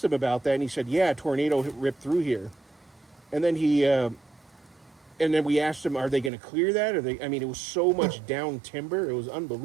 him about that, and he said, a tornado ripped through here. And then and then we asked him, are they going to clear that? It was so much down timber, it was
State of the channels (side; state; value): left; drops out; at 6.3 s